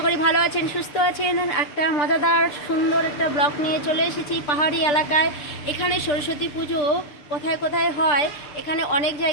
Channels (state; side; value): late; right; 6.8 ms